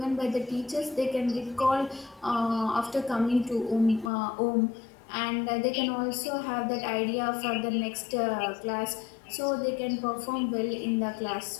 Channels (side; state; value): right; drops out; at 4.1 s